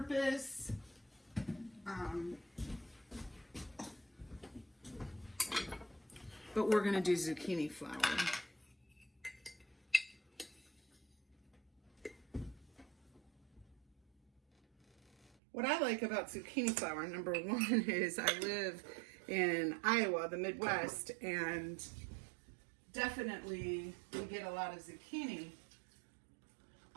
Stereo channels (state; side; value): drops out; left; at 15.4 s